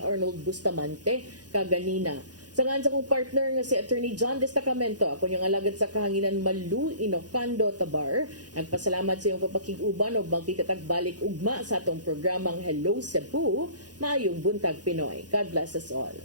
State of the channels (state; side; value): late; left; 0.69 ms